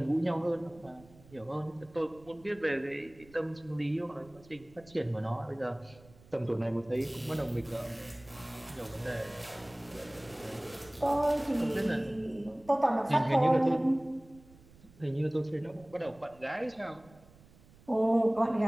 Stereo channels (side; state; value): right; noise; rumble, 24 dB below the sound